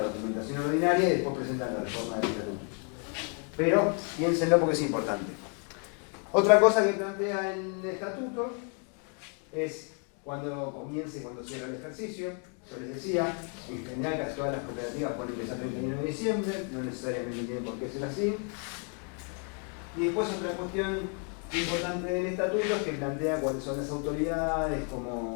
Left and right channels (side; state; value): right; quieter; 37.7 dB